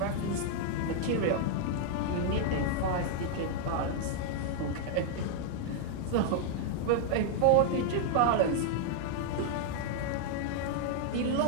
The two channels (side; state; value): both; different; correlation -0.01